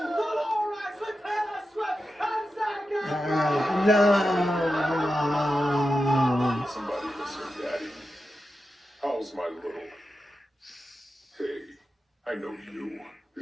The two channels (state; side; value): normal; both; correlation 0.91